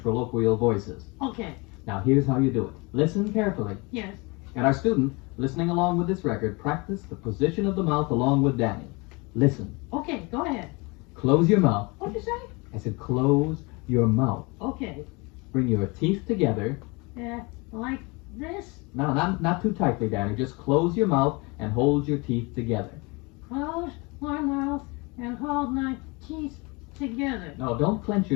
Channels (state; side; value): quieter; right; 27.4 dB